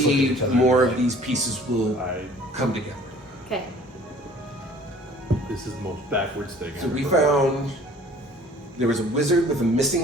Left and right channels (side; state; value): both; normal; correlation 0.51